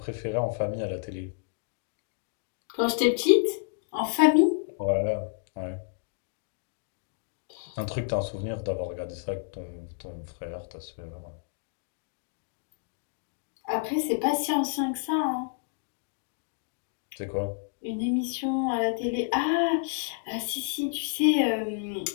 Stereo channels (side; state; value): right; silent; digital silence